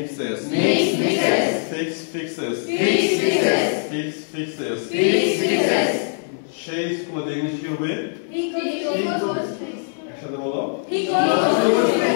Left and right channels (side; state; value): right; silent; digital silence